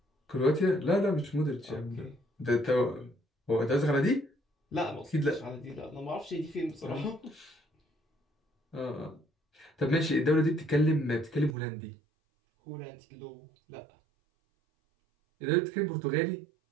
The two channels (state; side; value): drops out; left; at 11.6 s